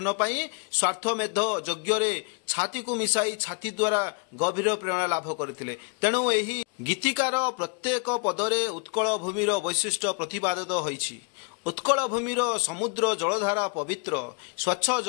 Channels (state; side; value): quieter; right; 34.0 dB